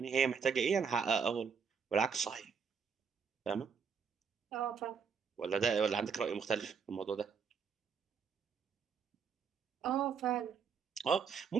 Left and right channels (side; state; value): left; quieter; 6.2 dB